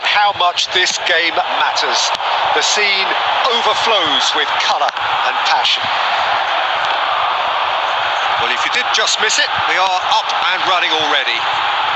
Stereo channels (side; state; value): both; identical; correlation 1.00